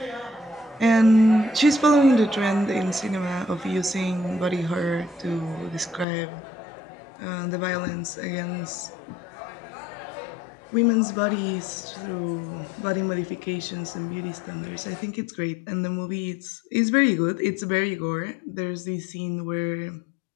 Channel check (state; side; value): drops out; right; at 6.1 s